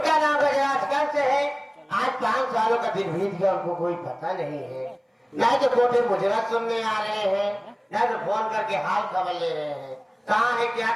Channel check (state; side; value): identical; both; correlation 1.00